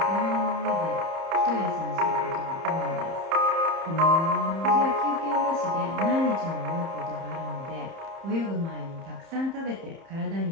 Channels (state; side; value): late; left; 30 ms